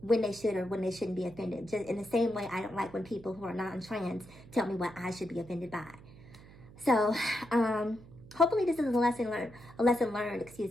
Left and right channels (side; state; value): right; noise; hum, 20 dB below the sound